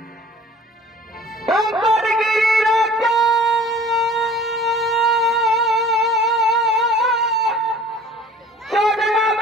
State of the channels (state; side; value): normal; both; correlation 0.47